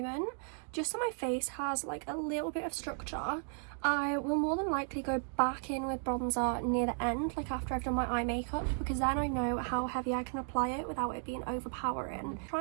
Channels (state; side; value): silent; left; 55 dB below the other